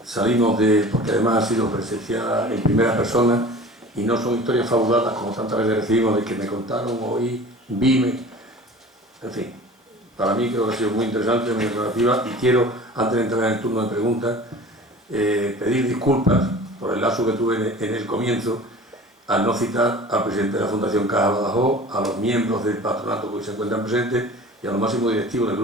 salimos porque además ha sido presenciada en primera persona y no son historias fabuladas como tantas veces recibimos de que me contaron, oí, vime. En fin, para mí creo que ha sido muy interesante, muy aclarativa y quiero, antes de entrar en el turno de preguntas, pedir disculpas por el lapso que tuve en el comienzo al no citar al presidente de la Fundación Caja Badajoz, a los miembros del patronato que hoy se encuentran presentes y a los máximos directivos del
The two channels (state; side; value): normal; both; correlation 0.41